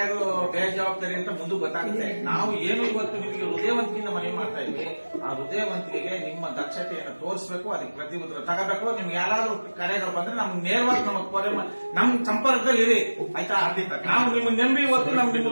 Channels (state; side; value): inverted; both; correlation -1.00